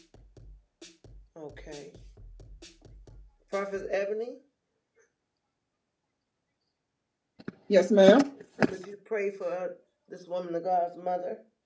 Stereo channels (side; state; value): both; identical; correlation 1.00